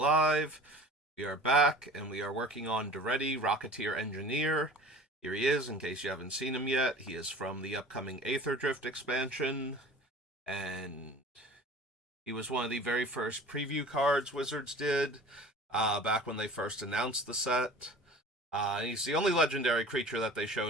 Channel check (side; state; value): both; normal; correlation 0.43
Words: We are back, and we are working on Daretti, Rocketeer Engineer. Here he is, in case you haven't seen him yet. He is from the upcoming Aether Drift expansion, and he was one of the very first preview cards Wizards did, back when they first announced the set. He's the only legendary creature that they